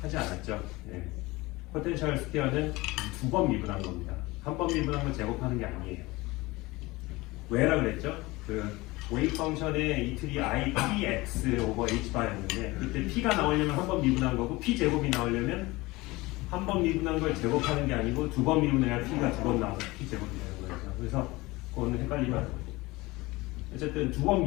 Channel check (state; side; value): quieter; right; 21.4 dB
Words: 하지 않았죠. 예. 포텐셜 스퀘어는 두 번 미분한 겁니다. 한 번 미분한 걸 제곱하는 게 아니에요. 왜라 그랬죠? 그 웨이브 펑션의 이틀이 I, Px 오버 H바였는데 그때 P가 나오려면 한 번 미분한 거고 P 제곱이 나오려면 한 번 미분한 걸 제곱하는 게 아니고 두 번 미분해야 P가 두 번 나와서 P 제곱이 되는 거죠. 그래서 그거는 헷갈리면 안 돼요. 어쨌든 두 번